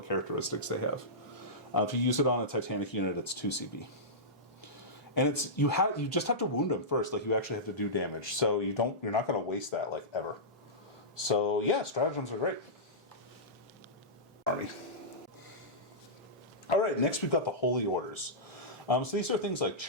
characteristics they have. If you use it on a Titanic unit, it's 2 CP. And it's you just have to wound them first. Like you actually have to do damage. So you're not going to waste that like ever. So yeah, stratagems are great. Army. All right, next we've got the Holy Orders. So these are things like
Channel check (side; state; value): both; normal; correlation -0.15